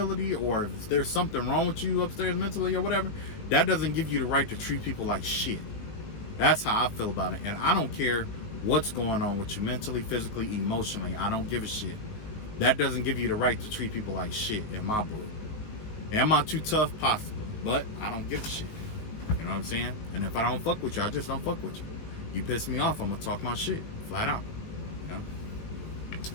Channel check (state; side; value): late; right; 19 ms